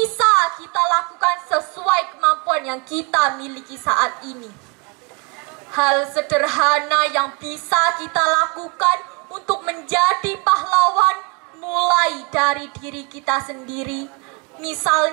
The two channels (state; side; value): quieter; left; 31.9 dB